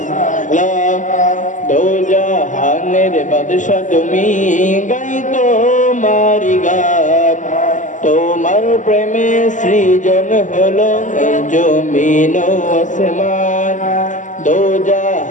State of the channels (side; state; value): right; late; 0.37 ms